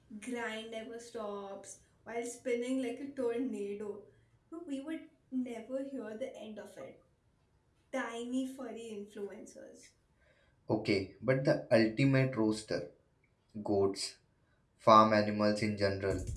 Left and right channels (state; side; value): identical; both; correlation 1.00